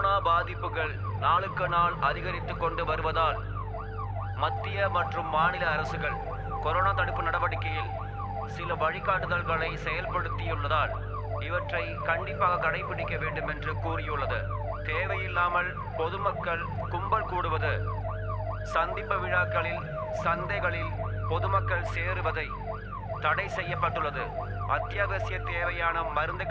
பாதிப்புகள் நாளுக்கு நாள் அதிகரித்து கொண்டு வருவதால் மத்திய மற்றும் மாநில அரசுகள் கொரோனா தடுப்பு நடவடிக்கையில் சில வழிகாட்டுதல்களை செயல்படுத்தியுள்ளதால் இவற்றை கண்டிப்பாக கடைபிடிக்க வேண்டும் என்று கூறியுள்ளது. தேவையில்லாமல் பொதுமக்கள் கும்பல் கூடுவது, சந்திப்பு விழாக்களில், சந்தைகளில் பொதுமக்கள் சேருவதை தடை செய்யப்பட்டுள்ளது. அத்தியாவசிய தேவையான மருந்து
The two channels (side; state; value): both; identical; correlation 1.00